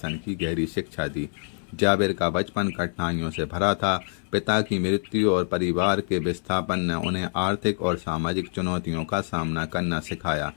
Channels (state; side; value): silent; right; 56 dB below the other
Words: की गहरी शिक्षा दी। जाबिर का बचपन कठिनाइयों से भरा था। पिता की मृत्यु और परिवार के विस्थापन ने उन्हें आर्थिक और सामाजिक चुनौतियों का सामना करना सिखाया,